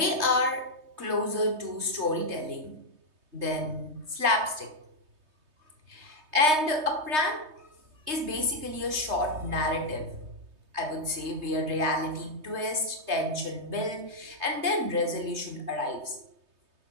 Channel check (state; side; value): late; left; 3.2 ms